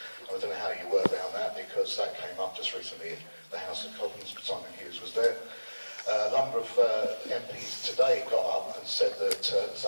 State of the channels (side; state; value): both; inverted; correlation -1.00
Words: I don't know how you work around that, because that came up just recently in the House of Commons. Simon Hughes was there. A number of MPs today got up and said that